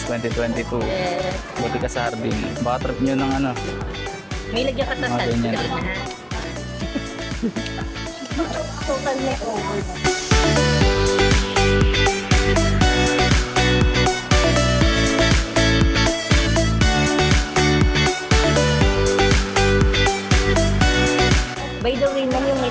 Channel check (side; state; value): both; identical; correlation 1.00